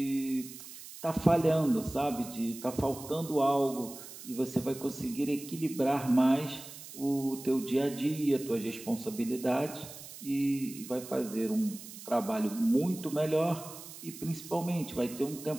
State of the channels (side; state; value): right; noise; hiss, 14 dB below the sound